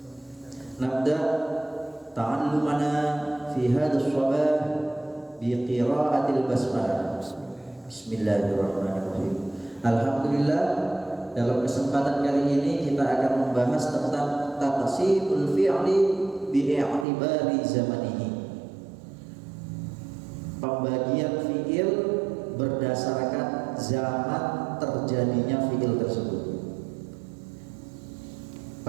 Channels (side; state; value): left; drops out; at 17.1 s